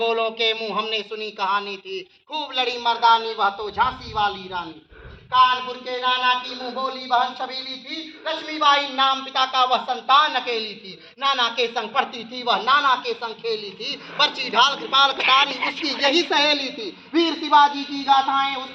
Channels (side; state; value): both; identical; correlation 1.00